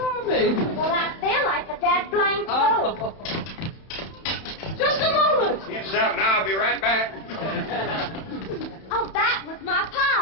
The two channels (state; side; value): late; right; 31 ms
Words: Well, I feel like a dead blank fool. Oh. Just a moment. Get something, I'll be right back. Oh, that was my